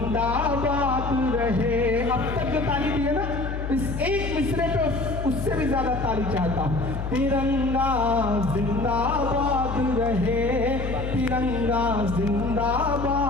रहे। अब तक जो ताली दी है ना, इस एक मिसरे पे उससे भी ज्यादा ताली चाहता हूं। तिरंगा जिंदाबाद रहे, तिरंगा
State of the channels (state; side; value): noise; left; hum, 4 dB below the sound